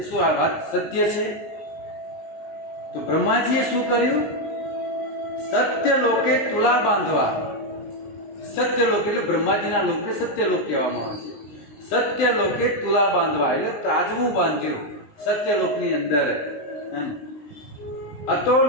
શું આ વાત સત્ય છે. તો બ્રહ્માજીએ શું કર્યું? સત્ય લોકે તુલા બાંધવા. સત્ય લોક એટલે બ્રહ્માજીના લોકને સત્ય લોક કહેવામાં આવે છે. સત્ય લોકે તુલા બાંધવા એટલે ત્રાજવું બાંધ્યું સત્ય લોકની અંદર.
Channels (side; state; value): right; late; 19 ms